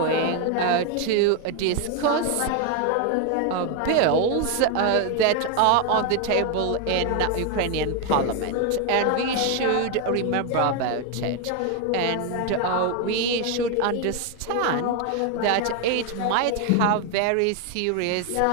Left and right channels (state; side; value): different; both; correlation 0.01